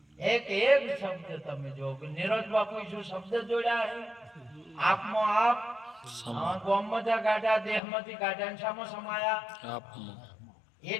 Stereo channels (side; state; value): right; drops out; at 7.8 s